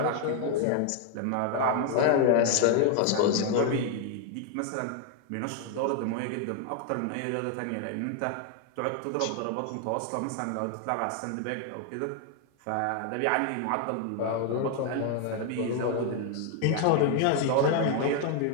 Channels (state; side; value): different; both; correlation 0.00